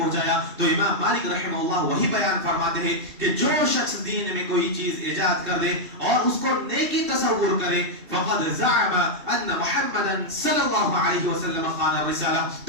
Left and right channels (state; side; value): late; left; 2.6 ms